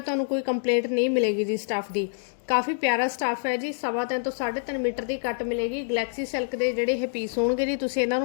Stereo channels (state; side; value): silent; right; digital silence